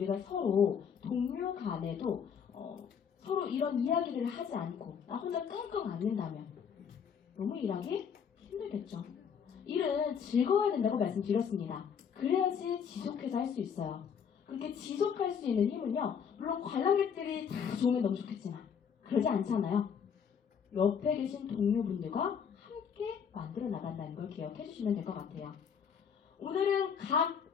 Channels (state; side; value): quieter; right; 7.2 dB